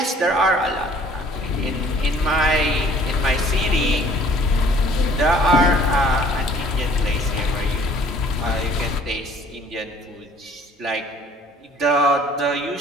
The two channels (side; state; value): both; normal; correlation 0.55